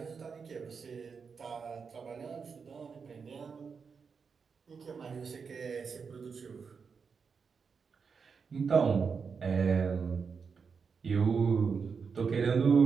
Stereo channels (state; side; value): quieter; left; 5.7 dB